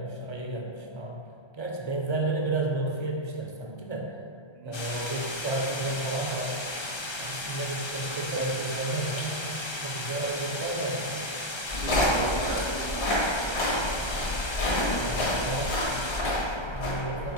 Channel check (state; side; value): late; right; 1.3 ms